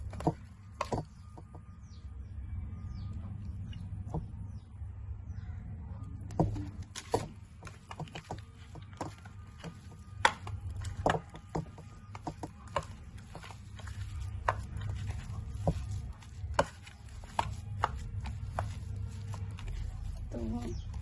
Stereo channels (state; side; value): identical; both; correlation 1.00